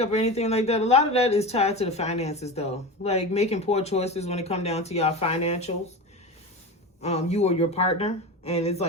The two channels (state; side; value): normal; both; correlation 0.26